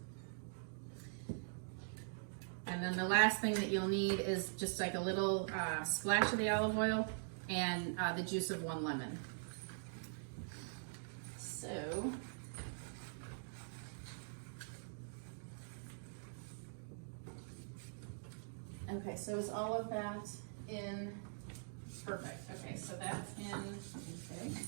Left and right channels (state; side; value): silent; left; digital silence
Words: And then the last thing that you'll need is just like a little splash of the olive oil and the juice of 1 lemon. So, okay, so is all of that in? Perfect. Okay, so that's in.